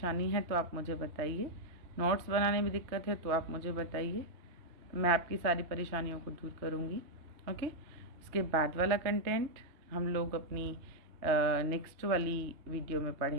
है तो आप मुझे बताइए, नोट्स बनाने में दिक्कत है तो आप मुझे बताइए, मैं आपकी सारी परेशानियों को दूर करूँगी। ओके, इसके बाद वाला कंटेंट हम लोग अपनी नेक्स्ट वाली वीडियो में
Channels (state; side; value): late; left; 3.2 ms